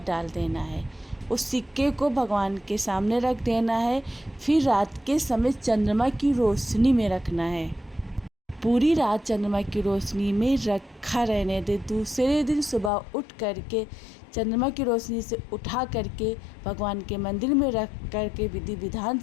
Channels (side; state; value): right; drops out; at 12.9 s